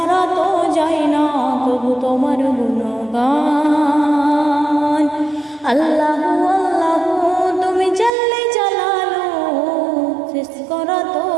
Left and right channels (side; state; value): left; drops out; at 8.1 s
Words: তো যায় না কবু তোমার গুণগান। আল্লাহু আল্লাহু তুমি জল্লে জালালু, শেষ করা তো